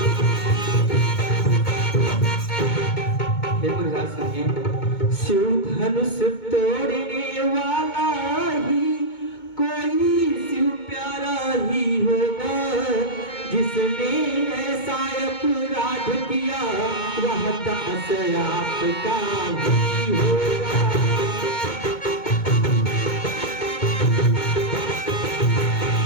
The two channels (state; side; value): late; right; 2.2 ms